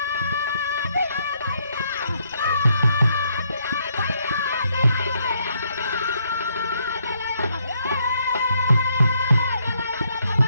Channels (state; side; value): inverted; both; correlation -0.73